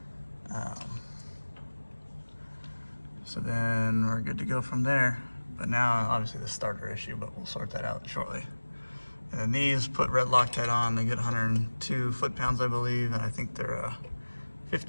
So then we're good to go from there. But now, obviously the starter issue, but we'll sort that out shortly. And then these, put red Loctite on, they get 102 foot-pounds, I believe, and I think they're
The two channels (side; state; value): both; inverted; correlation -1.00